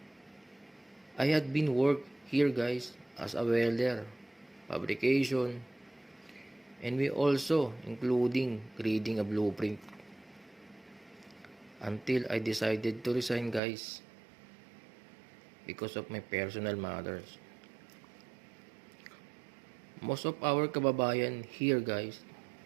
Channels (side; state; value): left; drops out; at 13.6 s